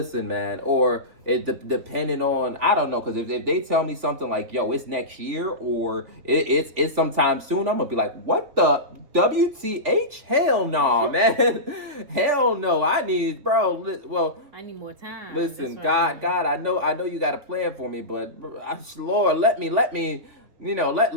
man. Or depending on, I don't know, because if they tell me something like, yo, it's next year, or it's sometime soon, I'm gonna be like, what the WTH? Hell no, man. Hell no. I need more time. Listen, God, I know you got a plan for me, but Lord, let me let me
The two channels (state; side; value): late; left; 3.8 ms